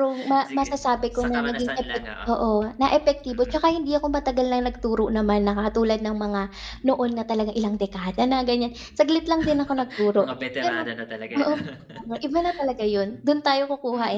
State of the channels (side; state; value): both; identical; correlation 1.00